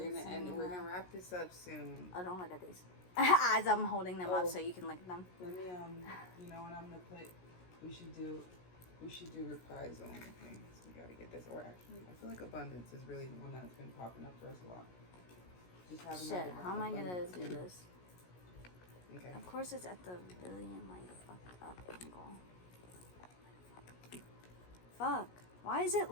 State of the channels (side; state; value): right; late; 17 ms